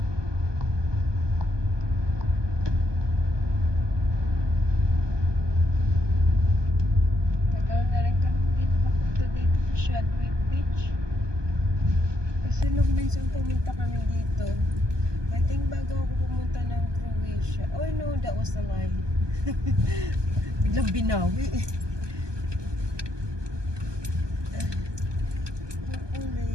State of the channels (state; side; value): late; left; 1.2 ms